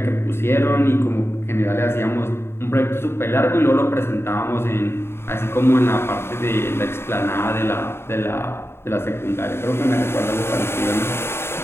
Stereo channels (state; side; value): late; right; 0.12 ms